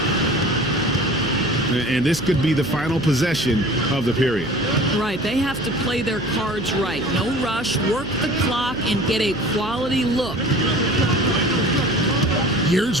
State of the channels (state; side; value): noise; right; hum, 12 dB below the sound